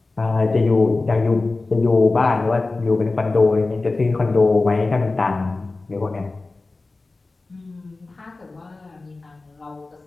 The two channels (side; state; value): right; quieter; 3.4 dB